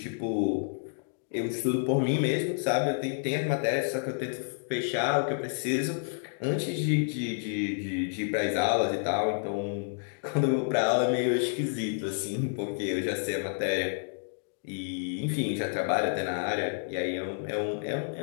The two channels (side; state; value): right; silent; digital silence